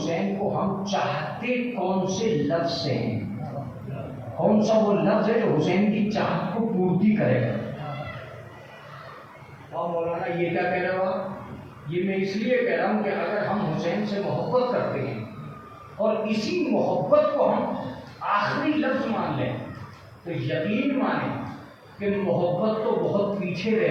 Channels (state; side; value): identical; both; correlation 1.00